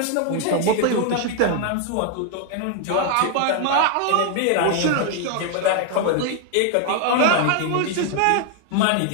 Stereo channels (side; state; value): both; different; correlation 0.00